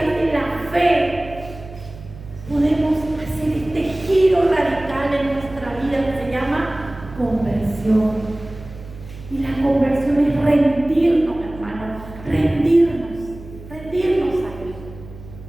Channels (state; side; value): noise; right; hum, 16 dB below the sound